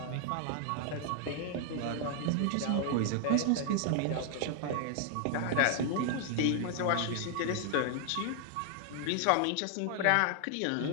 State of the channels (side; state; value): both; different; correlation 0.00